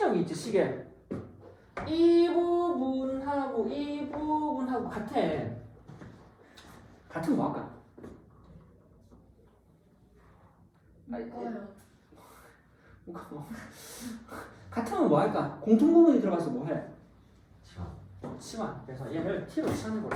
있지, 시계. 이 부분하고 이 부분하고 같아. 같은 뭐 할까? 뭐가 같으면 뭐 할까? 공통부분이 들어가서 뭐 해? 치환. 그래서 얘를 t로 치환해버려.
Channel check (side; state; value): both; identical; correlation 1.00